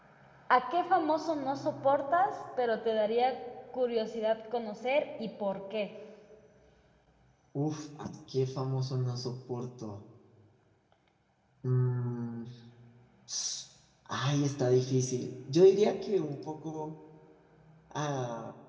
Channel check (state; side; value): identical; both; correlation 1.00